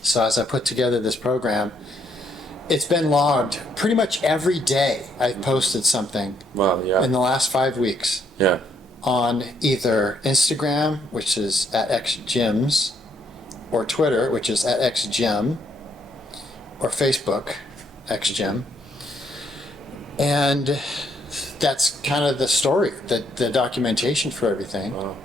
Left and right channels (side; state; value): both; normal; correlation 0.71